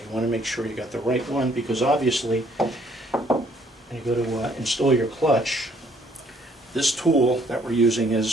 want to make sure you got the right one, because obviously when you go to install your clutch, this tool that we're using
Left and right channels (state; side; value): normal; both; correlation 0.64